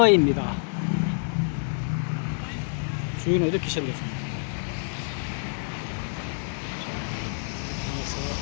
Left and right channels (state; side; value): silent; right; digital silence